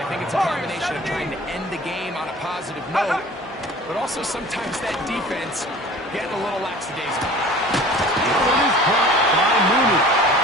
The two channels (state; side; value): normal; both; correlation 0.44